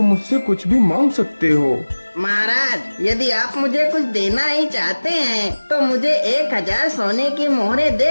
मुझसे कुछ भी मांग सकते हो। महाराज, यदि आप मुझे कुछ देना ही चाहते हैं तो मुझे 1000 सोने की मोहरें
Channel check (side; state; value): both; inverted; correlation -1.00